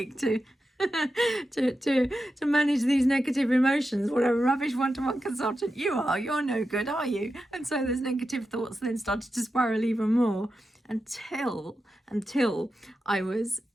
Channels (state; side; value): normal; both; correlation 0.90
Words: to manage these negative emotions. What a rubbish one-to-one consultant you are. You're no good, are you? And so those negative thoughts then started to spiral even more until I was